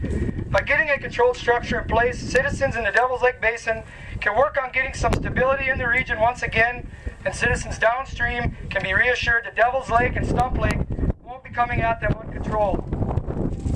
By getting a controlled structure in place, citizens in the Devil's Lake Basin can work on getting some stability in the region once again, and citizens downstream can be reassured that Devil's Lake and Stump Lake won't be coming at them uncontrolled.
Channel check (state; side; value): identical; both; correlation 1.00